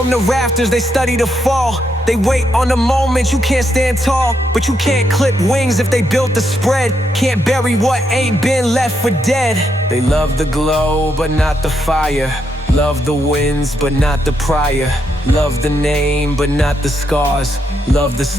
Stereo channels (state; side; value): normal; both; correlation 0.79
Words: the rafters, they study the fall. They wait on the moment, you can't stand tall. But you can't clip wings if they built the spread. Can't bury what ain't been left for dead. They love the glow, but not the fire. Love the wins, but not the prior. Love the name, but not the scars. Love the